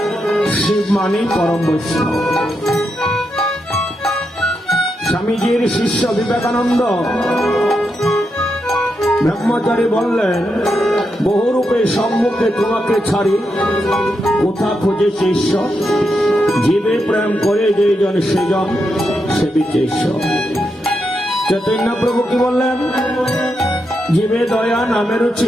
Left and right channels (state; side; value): normal; both; correlation 0.84